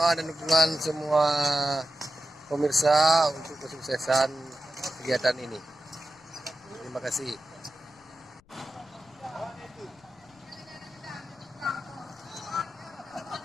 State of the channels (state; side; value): noise; left; rumble, 30 dB below the sound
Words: dan dukungan semua pemirsa untuk kesuksesan kegiatan ini. Terima kasih.